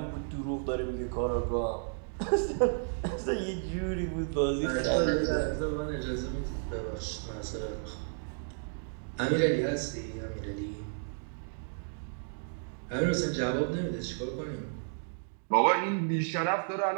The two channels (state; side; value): silent; left; digital silence